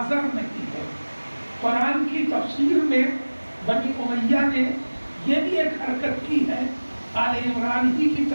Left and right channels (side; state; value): both; inverted; correlation -1.00